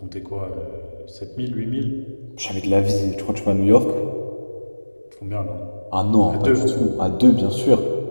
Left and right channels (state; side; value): inverted; both; correlation -1.00